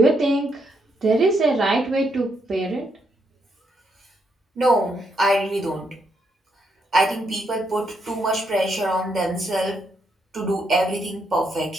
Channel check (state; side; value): normal; both; correlation 0.77